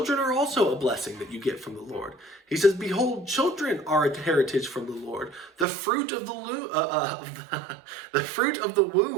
are also a blessing that you get from the Lord. He says, behold, children are a heritage from the Lord. The fruit of the fruit of the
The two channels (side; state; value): left; drops out; at 5.7 s